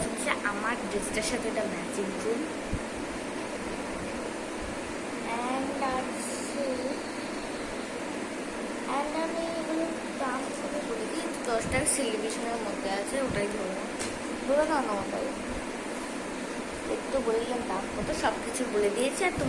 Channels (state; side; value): identical; both; correlation 1.00